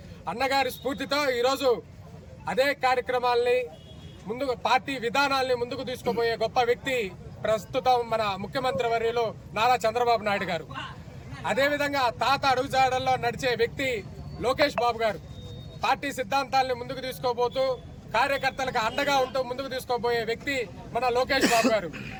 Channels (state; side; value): identical; both; correlation 1.00